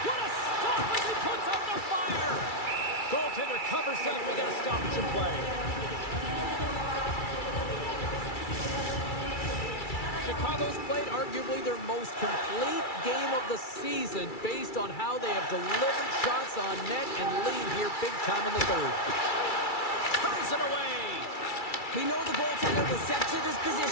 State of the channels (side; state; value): right; late; 2.3 ms